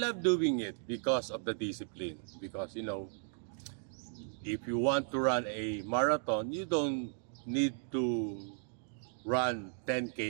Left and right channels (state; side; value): silent; left; digital silence